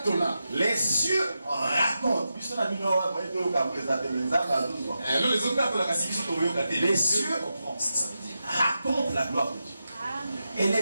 Les cieux racontent. Les cieux racontent la gloire de Dieu. Et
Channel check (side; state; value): both; inverted; correlation -0.89